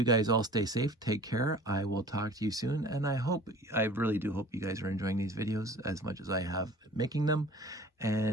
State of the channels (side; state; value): both; normal; correlation 0.46